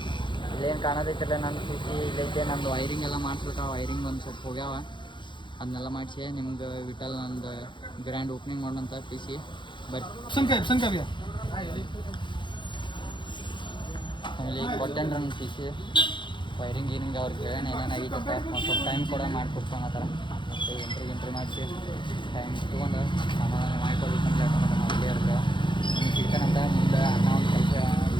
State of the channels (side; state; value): right; late; 0.23 ms